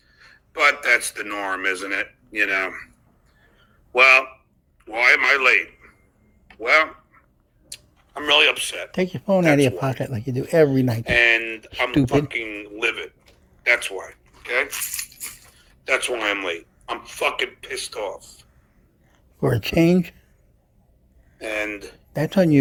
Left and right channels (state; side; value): identical; both; correlation 1.00